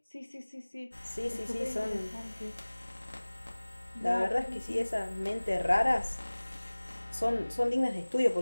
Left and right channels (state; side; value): inverted; both; correlation -1.00